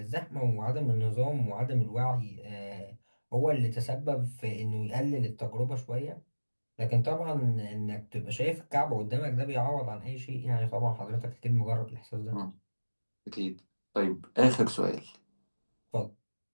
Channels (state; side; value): inverted; both; correlation -1.00